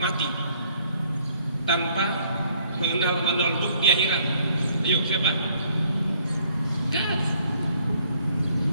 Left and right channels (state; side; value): inverted; both; correlation -0.63